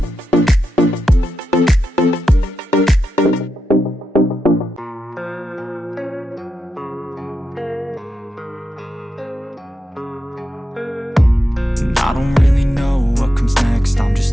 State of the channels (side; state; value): both; normal; correlation 0.87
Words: I don't really know what comes next. I'm